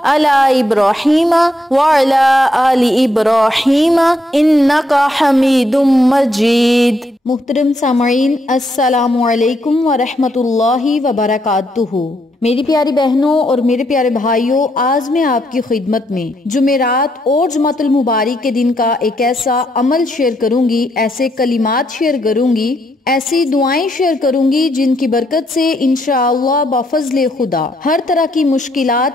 علی ابراہیم وعلی آل ابراہیم انک حمید مجید۔ محترم سامعین، السلام علیکم ورحمۃ اللہ وبرکاتہ۔ میری پیاری بہنوں اور میرے پیارے بھائیوں، آج میں آپ کی خدمت میں جمعرات اور جمعۃ المبارک کے دن کا ایک ایسا عمل شیئر کروں گی، ایسے کلمات شیئر کروں گی، ایسی دعائیں شیئر کروں گی جن کی برکت سے انشاءاللہ بفضل خدا ہر طرح کی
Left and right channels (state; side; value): normal; both; correlation 0.76